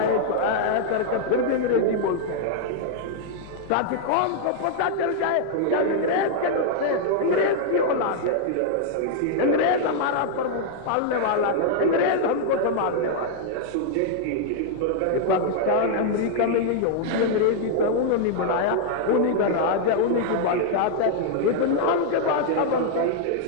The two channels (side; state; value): both; different; correlation -0.01